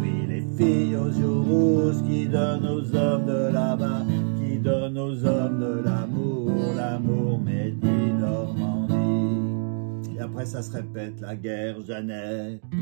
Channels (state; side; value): silent; left; digital silence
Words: les filles aux joues rouges qui donnent aux hommes de là-bas, qui donnent aux hommes de l'amour, l'amour Medi Normandie. Et après ça se répète, la guerre Jeannette,